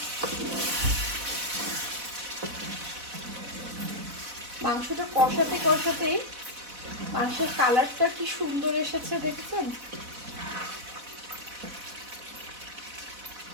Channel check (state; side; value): late; left; 4.1 ms